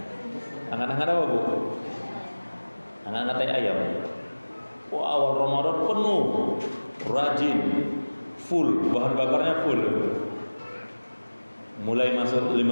Hangat-hangat apa, Bu? Hangat-hangat tai ayam. Wah, awal Ramadan penuh, rajin, full, bahan bakarnya full. Mulai masuk 5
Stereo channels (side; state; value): both; inverted; correlation -1.00